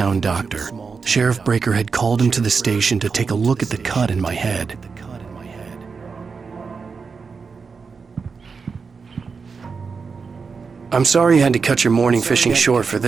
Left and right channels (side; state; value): left; quieter; 5.1 dB